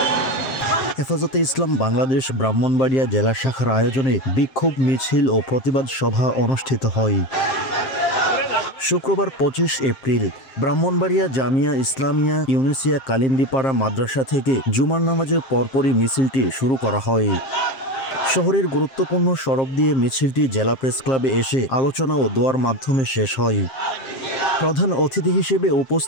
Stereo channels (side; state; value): right; late; 7.5 ms